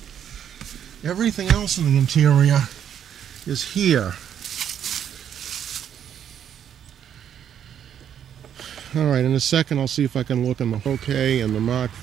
Everything else in the interior is here. Alright, in a second I'll see if I can look in the okay, and the Mark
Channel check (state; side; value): quieter; left; 9.2 dB